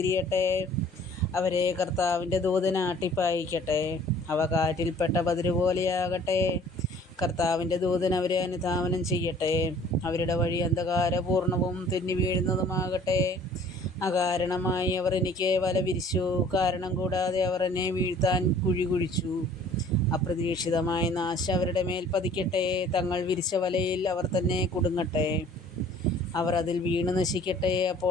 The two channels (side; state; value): both; normal; correlation 0.52